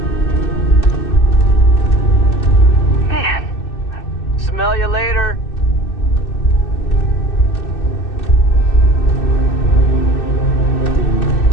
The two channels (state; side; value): late; right; 2.6 ms